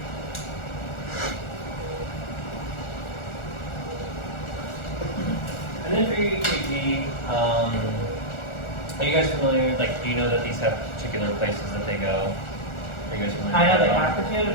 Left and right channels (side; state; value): right; late; 1.4 ms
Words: And then for your EKG, are you guys familiar, like, do you know that these have particular places that they go? Are you guys familiar? I know they have particular